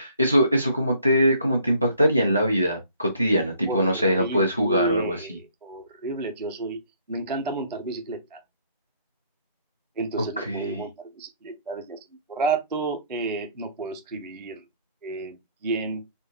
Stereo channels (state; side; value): inverted; both; correlation -0.62